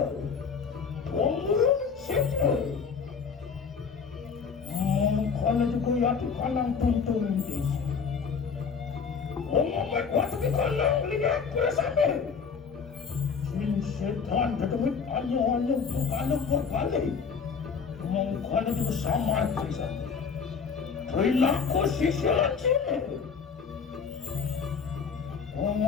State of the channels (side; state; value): right; quieter; 5.9 dB